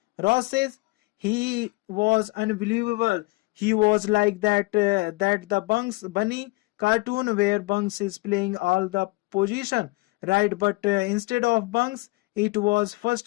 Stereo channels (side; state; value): right; quieter; 24.6 dB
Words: Ross says, he was unbelievable. He was like that the Bugs Bunny cartoon where Bugs is playing all the position, right? But instead of Bugs, it was